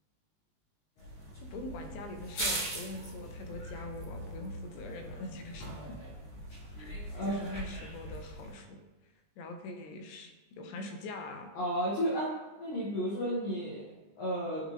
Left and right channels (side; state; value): right; late; 19 ms